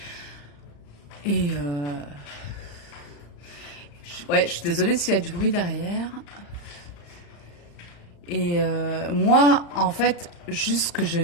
Et je suis désolée s'il y a du bruit derrière. Et moi, en fait, juste ce que je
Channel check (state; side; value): late; right; 35 ms